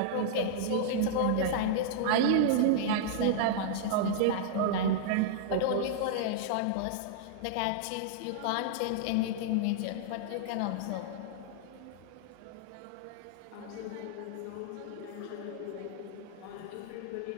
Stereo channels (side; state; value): both; different; correlation -0.01